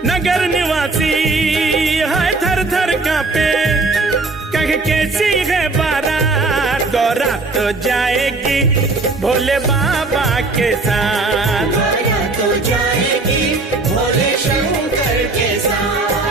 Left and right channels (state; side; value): quieter; left; 3.5 dB